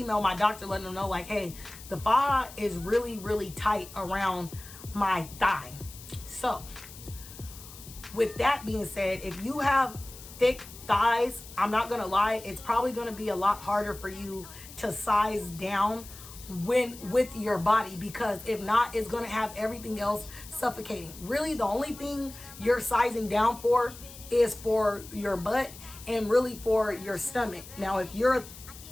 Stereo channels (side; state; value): left; noise; hiss, 16 dB below the sound